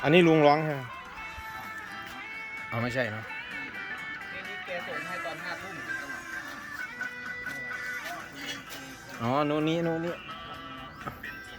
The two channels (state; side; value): identical; both; correlation 1.00